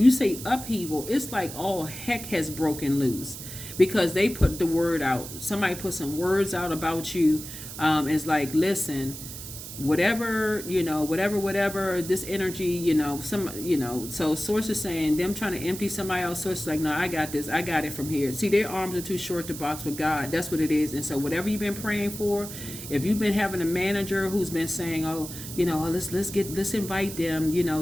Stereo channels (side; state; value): right; noise; hiss, 11 dB below the sound